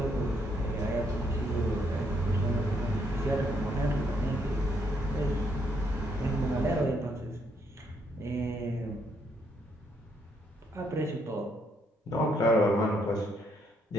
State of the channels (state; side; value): normal; both; correlation 0.74